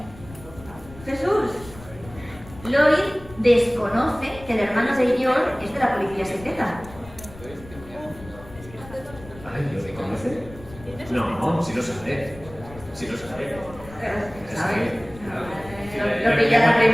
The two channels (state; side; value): noise; left; rumble, 17 dB below the sound